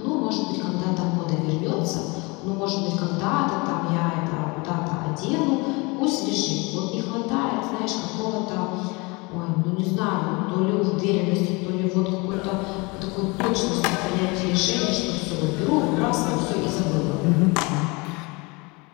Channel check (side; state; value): right; quieter; 26.9 dB